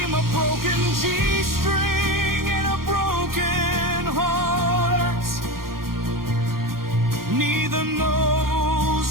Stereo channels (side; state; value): left; late; 0.92 ms